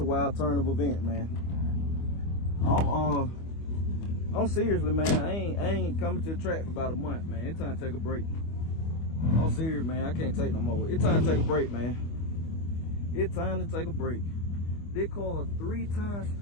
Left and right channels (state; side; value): late; right; 25 ms